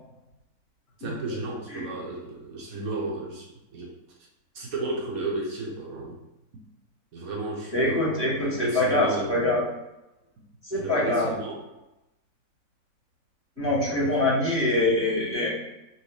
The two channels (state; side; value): late; left; 4.2 ms